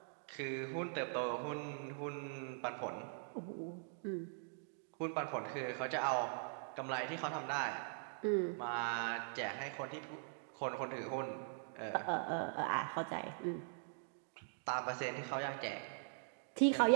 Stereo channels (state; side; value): silent; left; digital silence